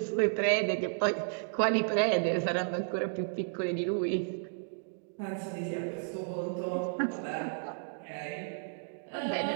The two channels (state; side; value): silent; left; digital silence